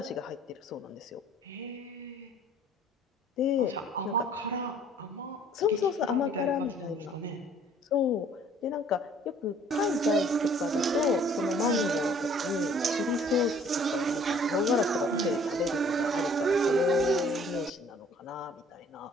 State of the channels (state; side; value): normal; both; correlation 0.56